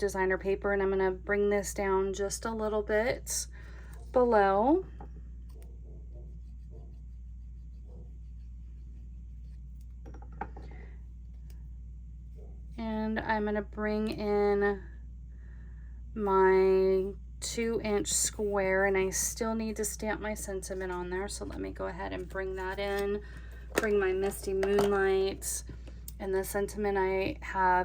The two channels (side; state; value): both; identical; correlation 1.00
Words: paper, and I'm going to bring this down just a little bit below. And I'm going to bring in my 2-inch square, and I still need to stamp my sentiment on there, so let me go ahead and bring that in. Bring my Misty Moonlight, and the sentiment I